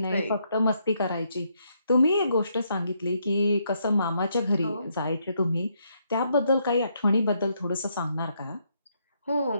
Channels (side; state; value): both; inverted; correlation -0.75